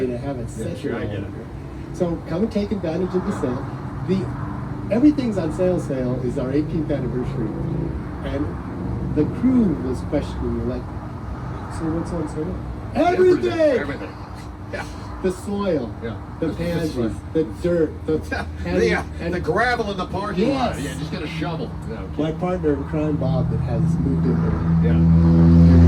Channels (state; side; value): identical; both; correlation 1.00